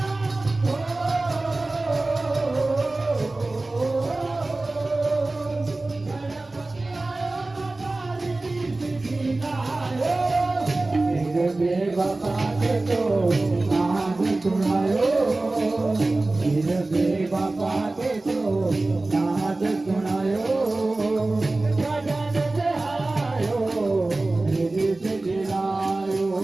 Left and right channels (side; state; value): left; quieter; 3.0 dB